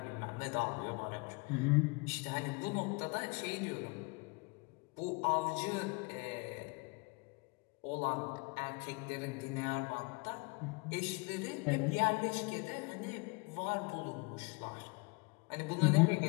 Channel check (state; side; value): quieter; right; 29.4 dB